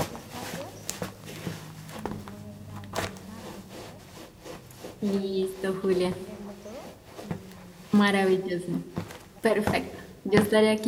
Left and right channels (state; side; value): identical; both; correlation 1.00